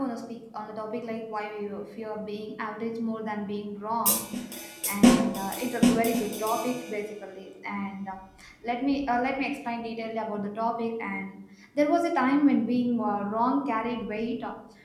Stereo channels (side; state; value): both; identical; correlation 1.00